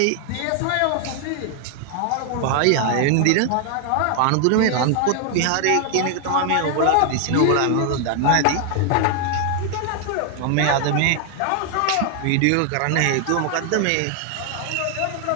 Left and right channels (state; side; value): different; both; correlation 0.00